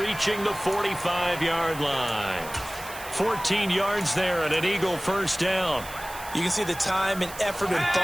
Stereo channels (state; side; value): noise; right; hiss, 14 dB below the sound